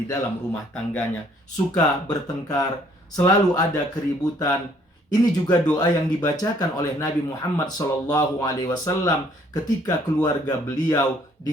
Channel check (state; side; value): normal; both; correlation 0.62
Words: dalam rumah tangganya, suka bertengkar, selalu ada keributan. Ini juga doa yang dibacakan oleh Nabi Muhammad SAW ketika keluarga beliau